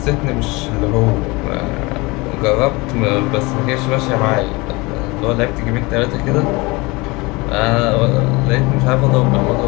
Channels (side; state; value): right; quieter; 24.6 dB